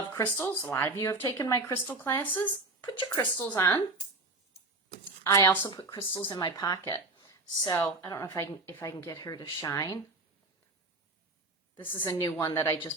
crystals. A lot of you have taken my crystal classes. Put your crystals on. I also put crystals in my pocket. So I don't know if I can get her to shine. This is a new one that I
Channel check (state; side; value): quieter; left; 3.0 dB